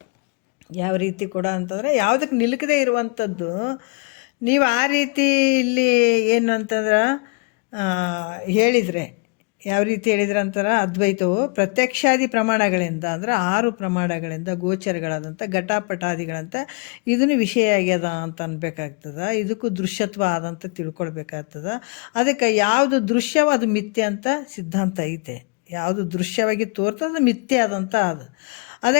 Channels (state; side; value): quieter; right; 33.3 dB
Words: ಯಾವ ರೀತಿ ಕೂಡ ಅಂತಂದರೆ ಯಾವುದಕ್ಕೆ ನಿಲುಕದೇ ಇರುವಂಥದ್ದು. ನೀವು ಆ ರೀತಿ ಇಲ್ಲಿ ಏನು ಅಂತಂದ್ರೆ ಹೇಳಿದರೆ, ಯಾವ ರೀತಿ ಹೇಳಿದ್ರೆ ಅಂತಾರೆ, ಅದ್ವೈತವು ಪ್ರತ್ಯಕ್ಷಾದಿ ಪ್ರಮಾಣಗಳಿಂದ ಅಂದರೆ 6 ಪ್ರಮಾಣಗಳಿಂದ ಗೋಚರಗಳಾದಂಥ ಘಟಪಟಾದಿಗಳಂತ ಇದನ್ನು ವಿಷಯ ಆಗ್ಯದ ಅಂತ ಅನ್ಬೇಕಾಗ್ತದೆ. ಇದಕ್ಕೂ ದೃಶ್ಯತ್ವ ಆದಂತ ತಿಳ್ಕೊಳ್ಬೇಕಾಗ್ತದೆ. ಅದಕ್ಕೆ ಯಾವುದು ದೃಶ್ಯವೋ ಅದು ಮಿಥ್ಯೆ ಅಂತ ಸಿದ್ಧಾಂತ ಐತೆ. ಯಾವುದು ದೃಶ್ಯವಾಗಿ ತೋರ್ತದೆ ಅದು ಮಿಥ್ಯೆ ಆದಂಥ ಅದು. ಅದೇ